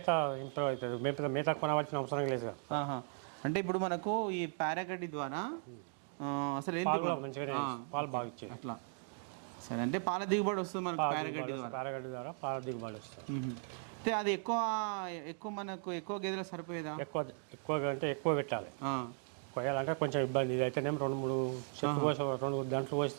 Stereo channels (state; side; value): silent; left; 53 dB below the other